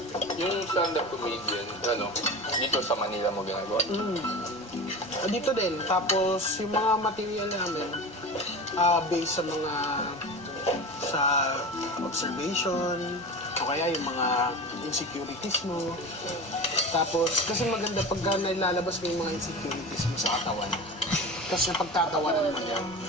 Yung stand-up comedian, dito sa Manila mo ginagawa? Dito din. Tapos yung mga material namin, based sa observation, o kaya yung mga insecurities mo. Tapos, kasi maganda pagka nailalabas mo yung mga insecurities mo sa katawan. Kasi napagtatawanan mo yan.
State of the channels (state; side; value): normal; both; correlation 0.31